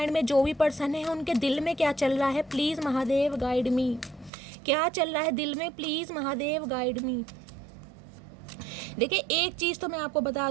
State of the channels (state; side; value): drops out; left; at 4.3 s